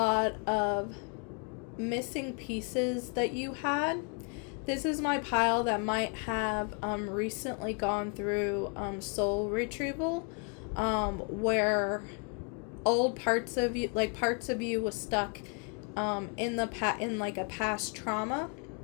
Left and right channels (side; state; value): right; quieter; 38.4 dB